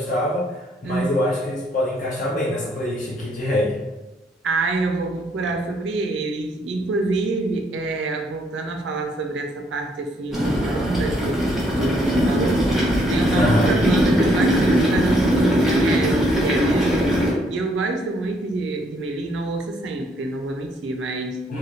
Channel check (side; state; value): both; normal; correlation 0.69